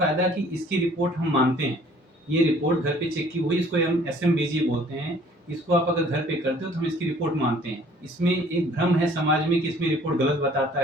कि इसकी रिपोर्ट हम मानते हैं। ये रिपोर्ट घर पे चेक की हुई, इसको हम एसएमबीजी बोलते हैं। इसको आप अगर घर पे करते हो तो हम इसकी रिपोर्ट मानते हैं। इसमें एक भ्रम है समाज में कि इसमें रिपोर्ट गलत बताता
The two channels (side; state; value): both; normal; correlation 0.56